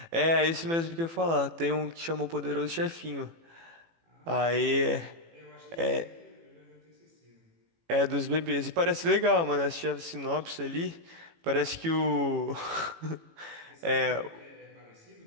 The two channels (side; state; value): left; late; 18 ms